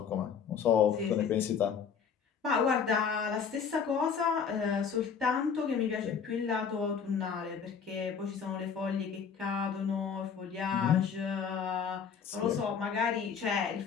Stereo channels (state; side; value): quieter; right; 6.7 dB